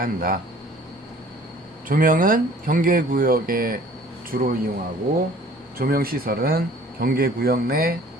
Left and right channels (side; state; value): both; normal; correlation 0.51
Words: 한다. 조명은 경계구역에 주로 이용하고 조명시설은 경계구역 내